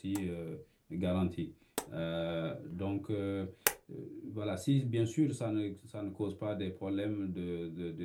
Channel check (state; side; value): identical; both; correlation 1.00